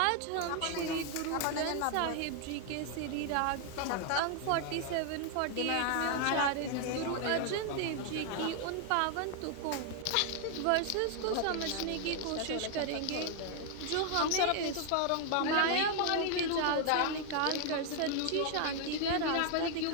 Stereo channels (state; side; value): different; both; correlation 0.00